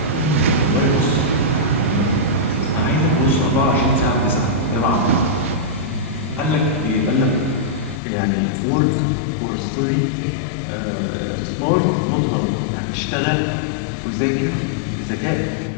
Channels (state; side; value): drops out; right; at 8.0 s